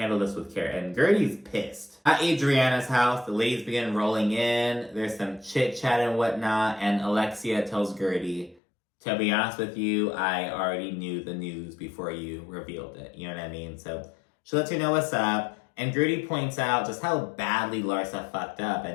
this with care, and Guerdy's pissed. At Adriana's house, the ladies begin rolling in. There's some chit-chat and whatnot, and Alexia tells Guerdy To be honest with you, I already knew the news before you revealed it. You know what I mean? So she lets you know what's up. And Guerdy points out just how badly Larsa fucked up.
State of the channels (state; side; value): drops out; right; at 8.6 s